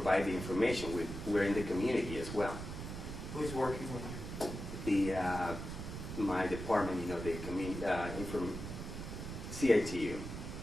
the information. We're in the community as well. Who's working with you? My department, the community, CITU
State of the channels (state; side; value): noise; right; rumble, 7 dB below the sound